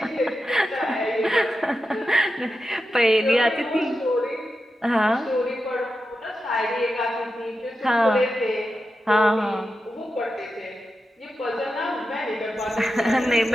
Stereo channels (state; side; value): normal; both; correlation 0.90